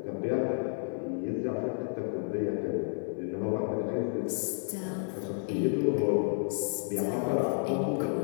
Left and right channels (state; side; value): silent; right; 57 dB below the other